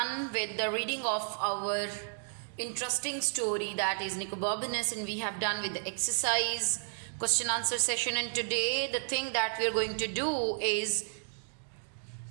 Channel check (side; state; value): left; silent; digital silence